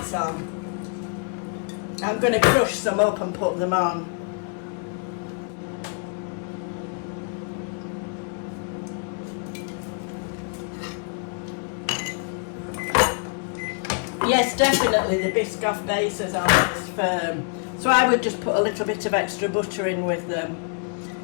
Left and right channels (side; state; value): right; quieter; 38.8 dB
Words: on. I'm going to crush some up and put them on. Yes, definitely the Biscoff bases are most firm. So I would just put a little bit of extra butter in with